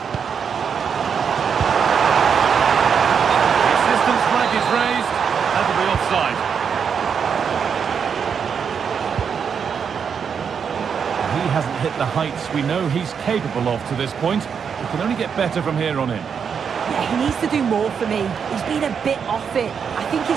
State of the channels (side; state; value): left; quieter; 6.8 dB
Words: The assistant's flag is raised. That'll be offside. He hasn't hit the heights we know he's capable of to this point. He can only get better from here on in. Yeah, he needs to do more for me. He's been a bit off it. I think